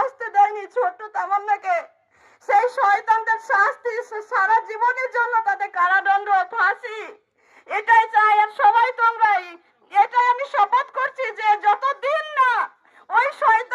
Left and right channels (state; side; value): identical; both; correlation 1.00